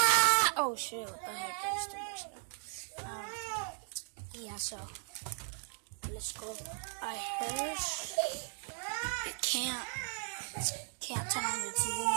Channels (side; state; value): left; silent; 53 dB below the other